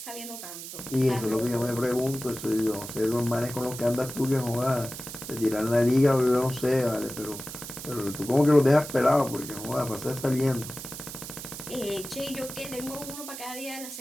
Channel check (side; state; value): right; noise; hiss, 10 dB below the sound